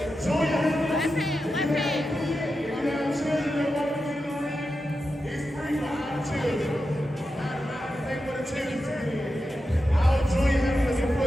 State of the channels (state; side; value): normal; both; correlation 0.90